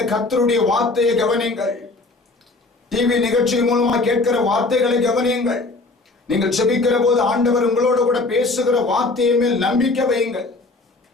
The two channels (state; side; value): quieter; right; 3.4 dB